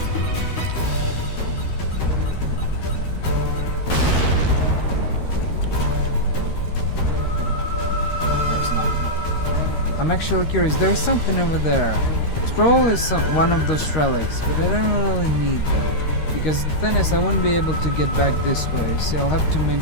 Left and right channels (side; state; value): right; late; 13 ms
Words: There's nothing. I'm actually curious. There's something over there. It's probably one of those relics, but I don't really need them. Because the thing is, I won't be able to get back this way. See, I'll have to